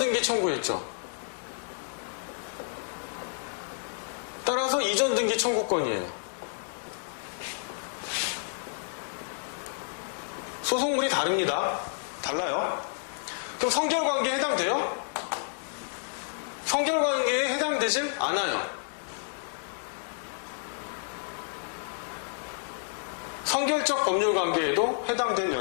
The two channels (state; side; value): silent; right; digital silence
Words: 청구했죠. 따라서 이전등기 청구권이에요. 소송물이 다릅니다. 달라요. 그럼 성결관계에 해당돼요? 성결관계에 해당되질 않아요. 성결적 법률관계에도 해당될